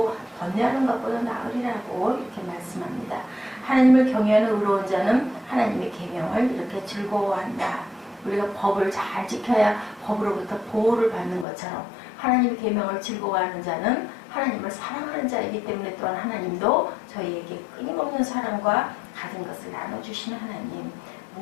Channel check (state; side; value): drops out; right; at 11.5 s